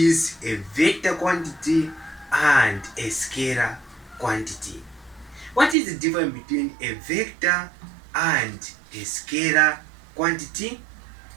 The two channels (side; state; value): left; drops out; at 5.8 s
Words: a vector quantity and a scalar quantity. What is the difference between a vector and a scalar quantity?